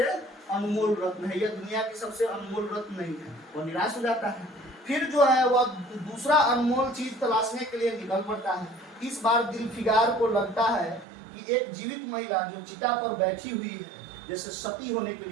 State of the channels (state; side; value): drops out; left; at 11.1 s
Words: अनमोल रत्न है, यह दुनिया की सबसे अनमोल रत्न नहीं है। वह निराश हो जाता है। फिर जो है वह दूसरा अनमोल चीज तलाशने के लिए निकल पड़ता है। इस बार दिलफिगार को लगता है कि एक जीवित महिला जो चिता पर बैठी हुई है, जैसे सती होने के